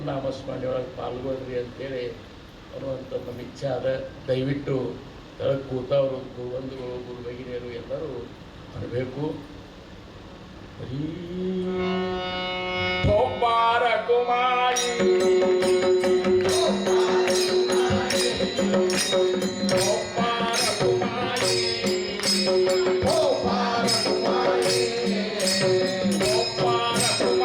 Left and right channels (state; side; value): identical; both; correlation 1.00